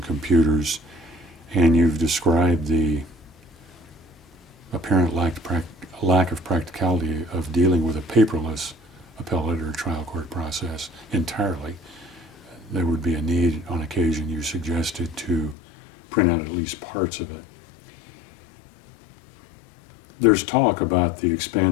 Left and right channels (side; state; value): right; drops out; at 15.6 s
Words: computers, and you've described the apparent lack of practicality of dealing with a paperless appellate or trial court process entirely. There would be a need on occasion, you suggested, to print out at least parts of it. There's talk about the